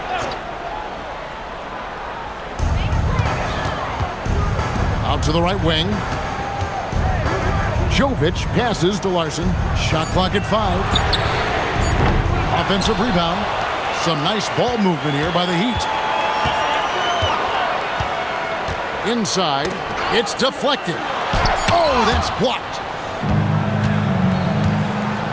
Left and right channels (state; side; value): identical; both; correlation 1.00